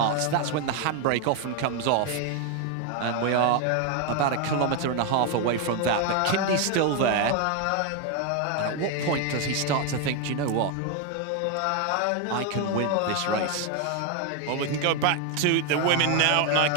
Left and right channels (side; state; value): both; different; correlation 0.01